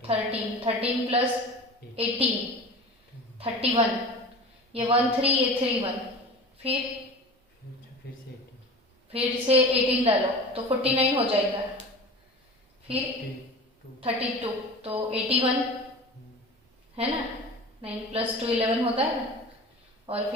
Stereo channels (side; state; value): both; normal; correlation 0.36